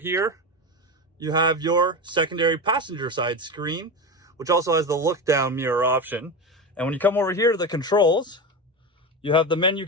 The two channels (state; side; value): normal; both; correlation 0.21